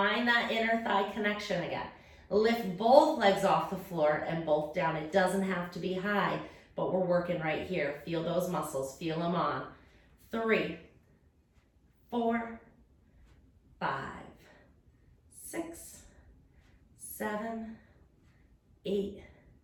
that inner thigh connection again. Lift both legs off the floor and both down. It doesn't have to be high, but we're working right here. Feel those muscles, feel them on. 3, 4, 5, 6, 7, 8,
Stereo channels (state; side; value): identical; both; correlation 1.00